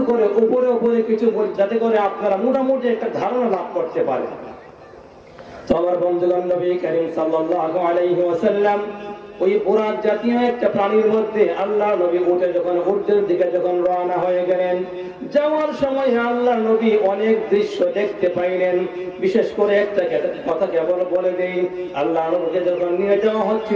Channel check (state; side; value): identical; both; correlation 1.00